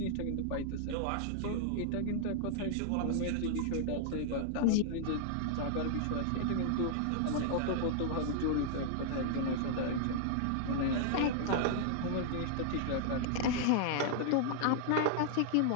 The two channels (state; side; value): different; both; correlation -0.01